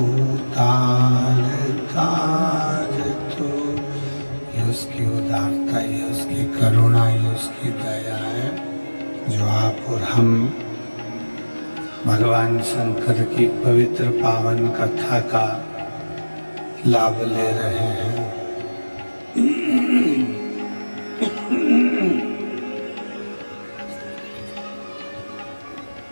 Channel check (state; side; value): inverted; both; correlation -1.00